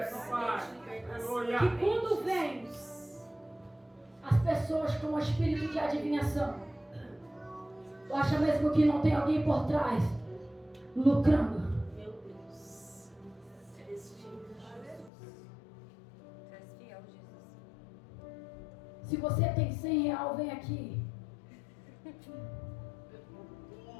papai! Aleluia! que quando vem as pessoas com o espírito de adivinhação, tu acha mesmo que não tem alguém por trás lucrando? Meu Deus. Tu és fiel, Jesus. Se você tem 100 real, vem aqui.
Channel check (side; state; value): right; drops out; at 15.1 s